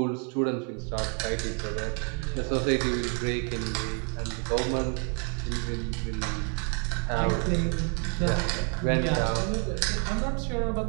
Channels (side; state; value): left; quieter; 38.4 dB